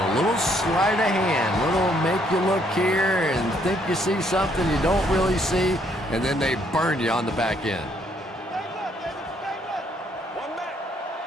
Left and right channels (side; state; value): both; normal; correlation 0.69